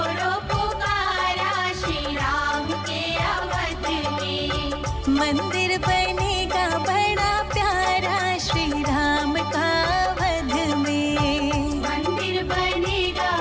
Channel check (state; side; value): identical; both; correlation 1.00